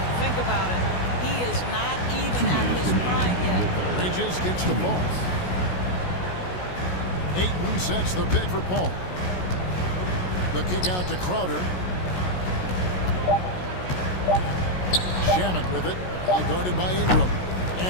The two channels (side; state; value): right; late; 16 ms